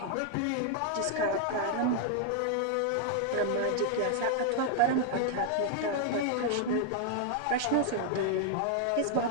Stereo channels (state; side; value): different; both; correlation 0.00